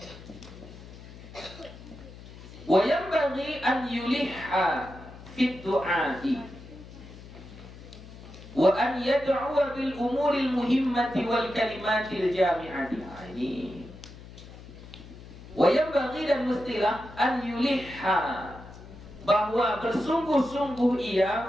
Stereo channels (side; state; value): left; noise; hum, 17 dB below the sound